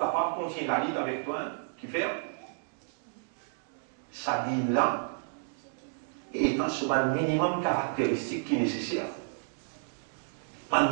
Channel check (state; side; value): silent; left; digital silence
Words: de continuer la lutte avec toi, qui fait ça dit là, et étant sur un minimum caractéristique qui est nécessaire. Un